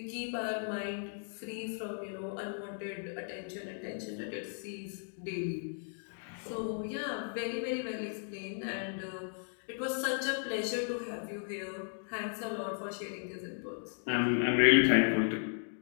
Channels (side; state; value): right; silent; 54 dB below the other